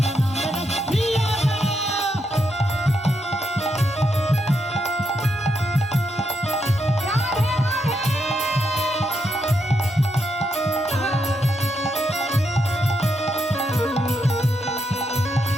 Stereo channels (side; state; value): both; normal; correlation 0.80